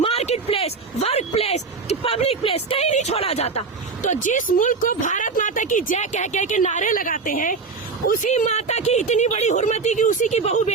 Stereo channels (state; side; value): quieter; left; 4.6 dB